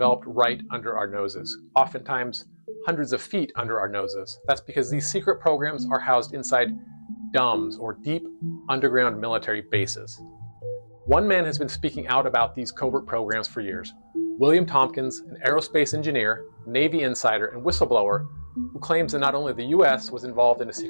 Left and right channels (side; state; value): both; inverted; correlation -1.00